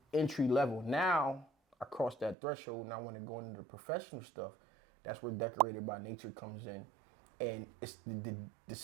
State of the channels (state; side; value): drops out; left; at 2.4 s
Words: entry level. Now I crossed that threshold and I want to go into the professional stuff. That's where Decorated by Nature comes in. And it's the